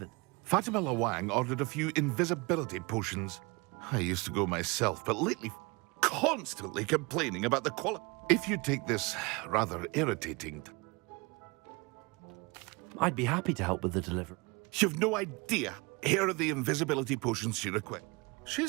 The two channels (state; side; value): quieter; left; 27.1 dB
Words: Fatima Lawang ordered a few invisibility potions. I used to go myself, but lately constantly complaining about the quality. If you take this rather irritating... I'd be happy to help with the delivery. You've no idea. Here are the invisibility potions she requests.